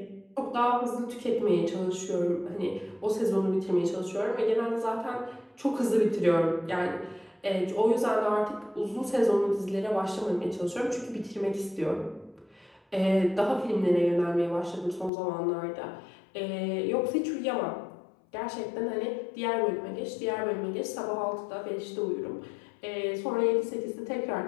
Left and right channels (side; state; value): right; drops out; at 15.1 s